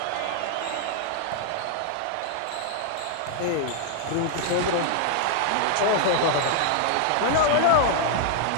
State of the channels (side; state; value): both; different; correlation 0.00